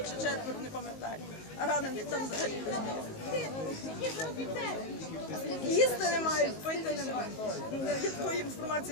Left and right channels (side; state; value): right; late; 19 ms